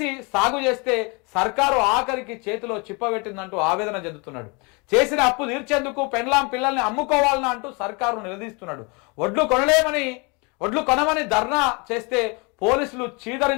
సాగు చేస్తే సర్కారు ఆఖరికి చేతిలో చిప్పబెట్టిందంటూ ఆవేదన చెందుతున్నాడు. చేసిన అప్పు తీర్చేందుకు పెన్లాం పిల్లల్ని అమ్ముకోవాలని అంటూ సర్కారు నిలదీస్తున్నాడు. వడ్లు కొనమని ధర్నా చేస్తే పోలీసులు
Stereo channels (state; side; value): quieter; right; 30.4 dB